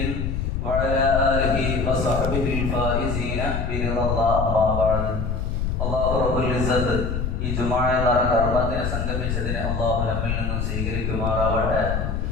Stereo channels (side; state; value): left; noise; rumble, 1 dB below the sound